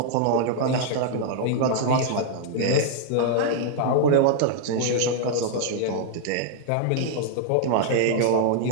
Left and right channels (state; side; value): different; both; correlation -0.01